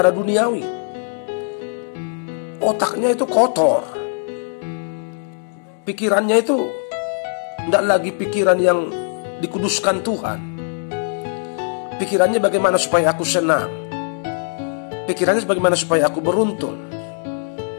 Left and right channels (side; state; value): right; silent; 63 dB below the other